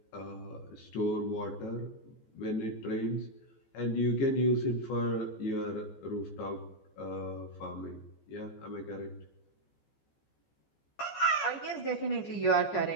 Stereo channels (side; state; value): right; late; 14 ms